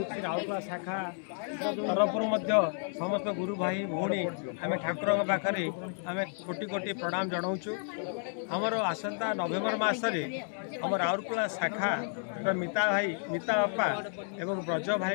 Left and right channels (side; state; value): right; silent; 57 dB below the other